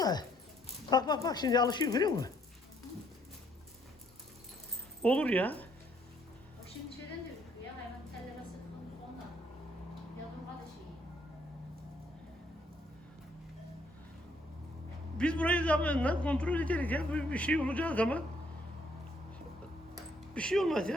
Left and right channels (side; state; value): both; normal; correlation 0.68